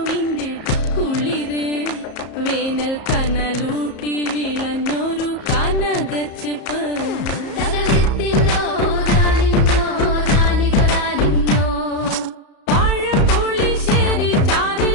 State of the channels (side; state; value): right; late; 34 ms